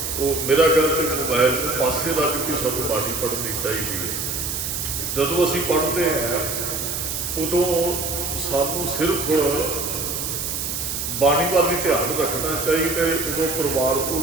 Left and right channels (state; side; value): noise; right; hiss, 3 dB below the sound